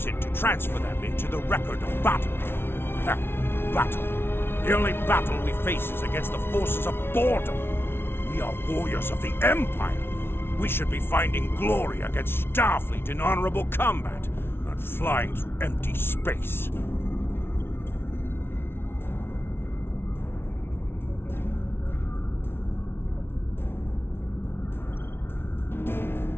it to transfer them into the record of battle. Battle. The only battle we face is against the forces of boredom. We are warriors of the Empire. We should be finding glory against Starfleet in honorable combat, not flying through empty space.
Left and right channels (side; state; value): right; late; 0.11 ms